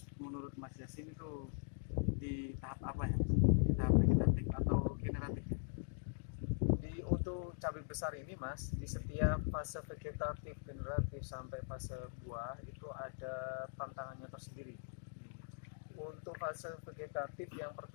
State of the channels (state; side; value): silent; right; digital silence